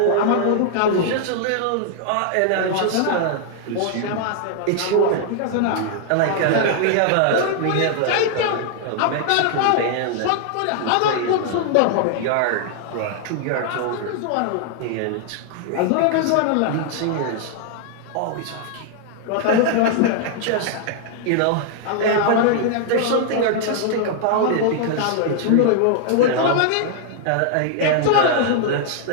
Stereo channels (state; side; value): different; both; correlation 0.00